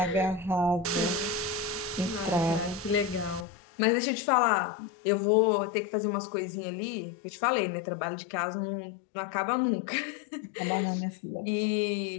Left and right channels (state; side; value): drops out; right; at 3.5 s